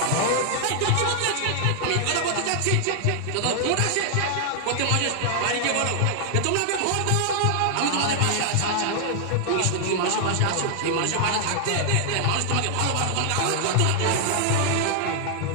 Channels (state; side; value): different; both; correlation 0.00